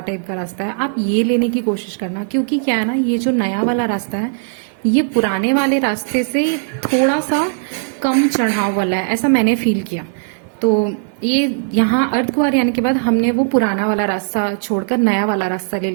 टाइप का रास्ता है, आप ये लेने की कोशिश करना। क्योंकि क्या है ना, ये जो नया वाला रास्ता है ये पुराने वाले रास्ते से थोड़ा सा कम चढ़ाव वाला है, ऐसा मैंने फील किया। तो ये यहाँ अर्धकुंवारी आने के बाद हमने वो पुराना वाला रास्ता छोड़कर नया वाला रास्ता ले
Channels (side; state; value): left; silent; digital silence